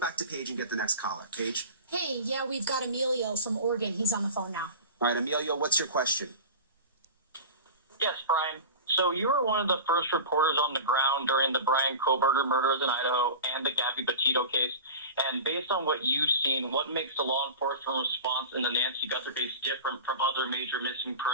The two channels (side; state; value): both; inverted; correlation -0.32